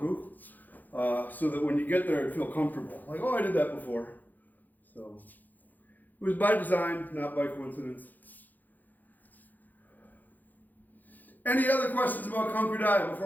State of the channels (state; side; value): late; right; 0.084 ms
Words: so that when you get there, it'd feel comfortable. Like, oh, I did that before. So it was by design, not by coincidence. Any other questions about Kanku Dai